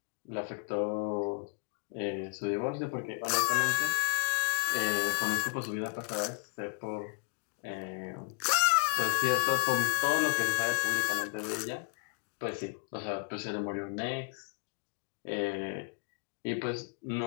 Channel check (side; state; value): right; quieter; 37.4 dB